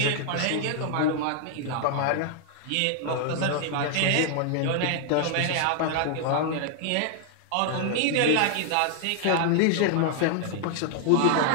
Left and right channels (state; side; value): different; both; correlation 0.00